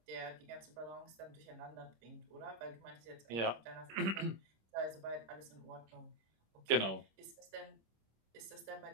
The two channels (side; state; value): left; late; 26 ms